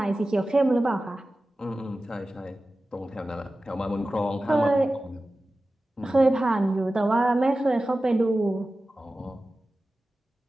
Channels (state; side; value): normal; both; correlation 0.95